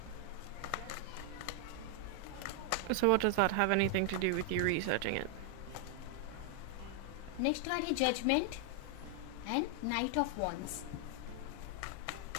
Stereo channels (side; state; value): both; different; correlation 0.00